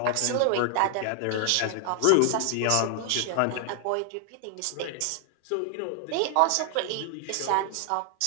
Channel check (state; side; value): different; both; correlation 0.00